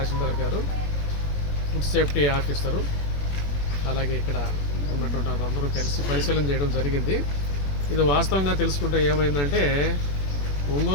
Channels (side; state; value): right; late; 21 ms